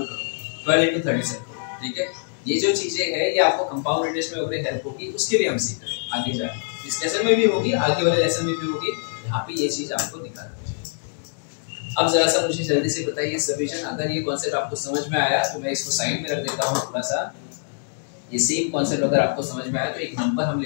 करो, 12 into 37, ठीक है। ये जो चीजें है ये आपको कंपाउंड इंटरेस्ट में वगैरह हेल्प होगी, उसके लिए हम सीख रहे हैं आगे जाके, इस लेसन में भी होगी, आगे वाले लेसन में भी होगी। यहाँ पे ये चीज आपको निकालना है। अब जरा सा मुझे जल्दी से बताइए सब्डिविजन, अगर ये कॉन्सेप्ट आपको समझ में आया तो मैं इसको साइड में रख देता हूँ थोड़ा सा। ये सेम कॉन्सेप्ट अगर आपको समझ में आया तो एक नंबर हम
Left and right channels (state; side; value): silent; right; digital silence